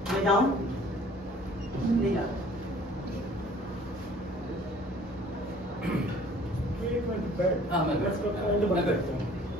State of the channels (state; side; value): normal; both; correlation 0.53